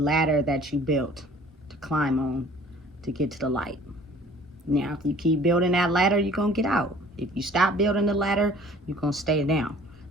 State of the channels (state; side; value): normal; both; correlation 0.51